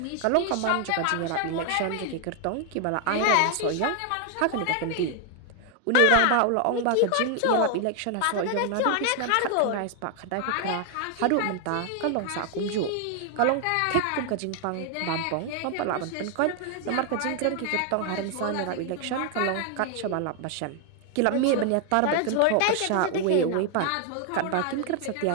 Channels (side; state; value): both; different; correlation 0.00